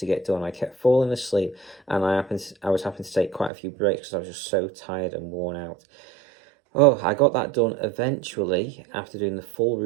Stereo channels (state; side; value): drops out; left; at 3.5 s